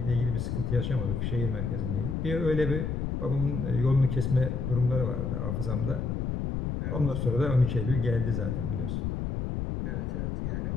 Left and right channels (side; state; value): left; noise; rumble, 1 dB below the sound